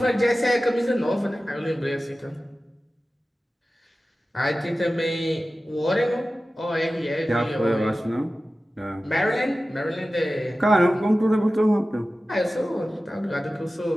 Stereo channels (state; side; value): normal; both; correlation 0.95